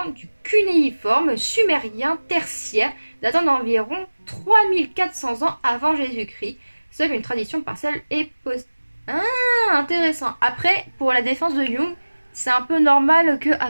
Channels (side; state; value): both; inverted; correlation -1.00